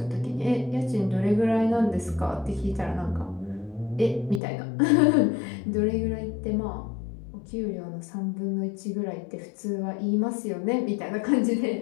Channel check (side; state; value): right; drops out; at 4.4 s